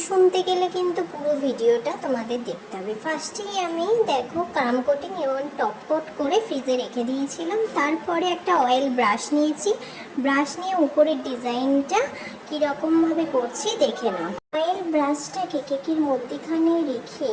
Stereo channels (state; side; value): identical; both; correlation 1.00